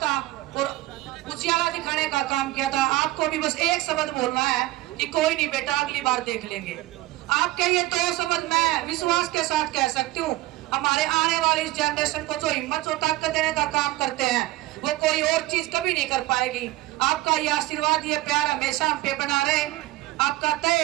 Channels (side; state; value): left; quieter; 18.1 dB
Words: और उजियाला दिखाने का काम किया था, आपको भी बस एक शब्द बोलना है कि कोई नहीं बेटा, अगली बार देख लेंगे। आपके ये 2 शब्द मैं विश्वास के साथ कह सकती हूँ, हमारे आने वाली इस जनरेशन को जो हिम्मत और ताकत देने का काम करते हैं वो कोई और चीज कभी नहीं कर पाएगी। आपका ये आशीर्वाद, ये प्यार हमेशा हम पे बना रहे। आपका